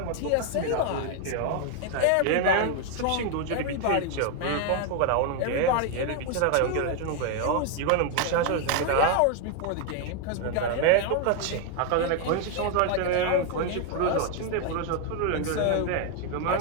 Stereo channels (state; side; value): different; both; correlation 0.01